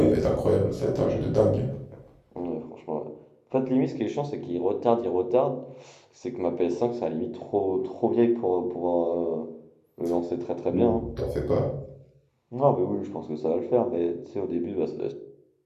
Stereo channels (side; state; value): both; identical; correlation 1.00